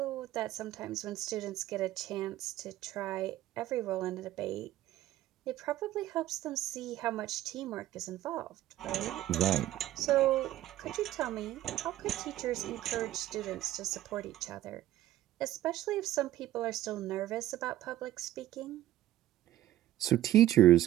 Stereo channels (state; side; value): quieter; left; 14.1 dB